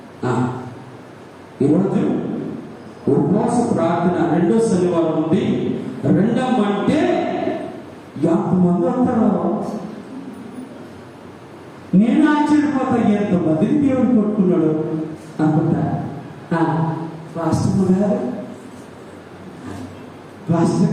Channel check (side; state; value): both; identical; correlation 1.00